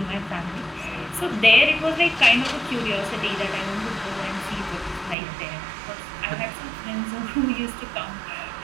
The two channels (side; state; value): left; drops out; at 5.2 s